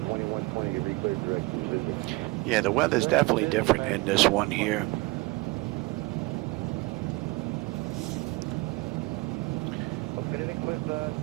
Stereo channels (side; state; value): left; quieter; 24.4 dB